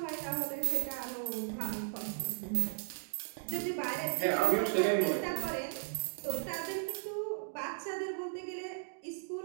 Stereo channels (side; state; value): left; silent; digital silence